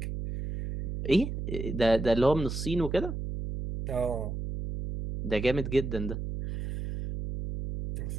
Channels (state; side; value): noise; right; hum, 5 dB below the sound